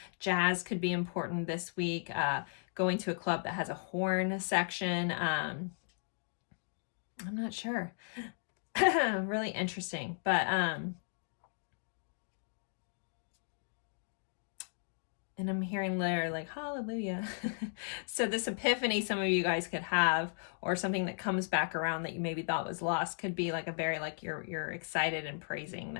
jazz could be important this week. Going to a club that has a horn section. I'm not sure. Really interesting, but, and I'm hearing literally like, hallelujah. So this epiphany some of you guys could have, or something that comes back around that you maybe thought was lost, could be like a very, like you're excited and praising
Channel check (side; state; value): right; silent; digital silence